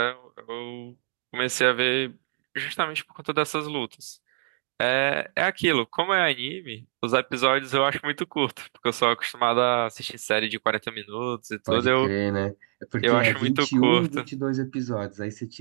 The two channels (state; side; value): silent; left; digital silence